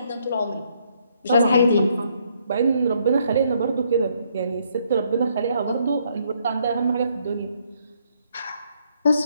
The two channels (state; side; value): inverted; both; correlation -0.71